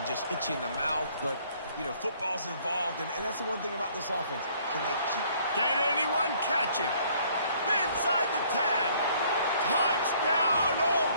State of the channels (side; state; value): both; inverted; correlation -0.61